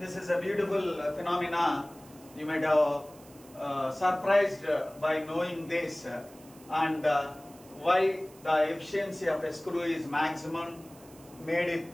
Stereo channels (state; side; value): noise; right; hiss, 24 dB below the sound